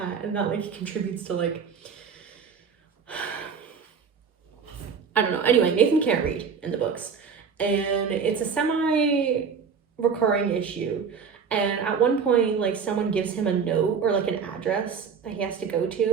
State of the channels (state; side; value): quieter; left; 6.2 dB